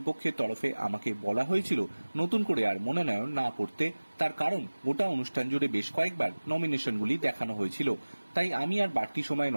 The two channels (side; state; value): both; inverted; correlation -1.00